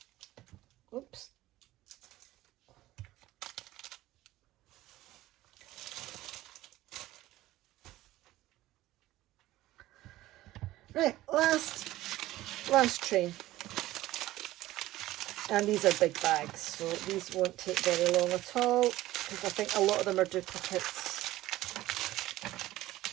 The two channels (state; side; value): quieter; left; 16.1 dB